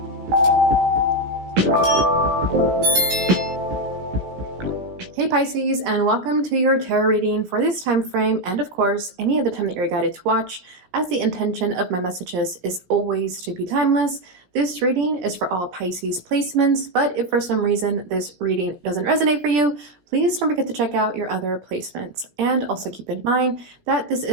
Pisces, and welcome to your tarot reading for this time frame, and of course any other time that you're guided to watch, as the intention of my messages is always to be timeless. This reading is for all Pisces placements, but if for some reason this reading doesn't resonate for you, please don't forget to check out your other placements. And also keep in mind that this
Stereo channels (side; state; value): left; late; 16 ms